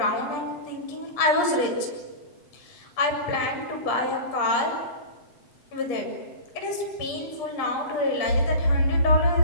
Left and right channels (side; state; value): right; late; 7.8 ms